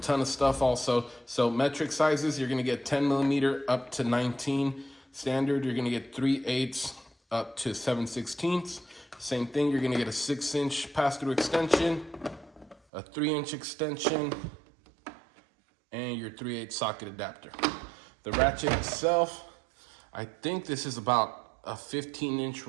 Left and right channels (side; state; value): left; drops out; at 12.8 s